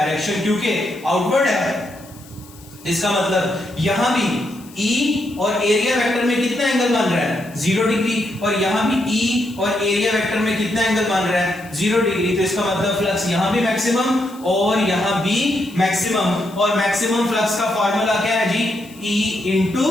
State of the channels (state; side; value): noise; left; hiss, 23 dB below the sound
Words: क्योंकि आउटवर्ड है, इसका मतलब यहां भी E और एरिया वेक्टर में कितना एंगल बन रहा है? 0 डिग्री। और यहां भी E और एरिया वेक्टर में कितना एंगल बन रहा है? 0 डिग्री। तो इसका मतलब फ्लक्स यहां भी मैक्सिमम और यहां भी मैक्सिमम। और मैक्सिमम फ्लक्स का फॉर्मूला क्या है जी? E into